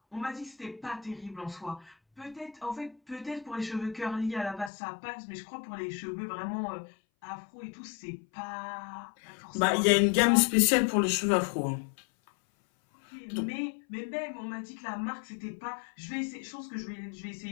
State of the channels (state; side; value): drops out; right; at 4.7 s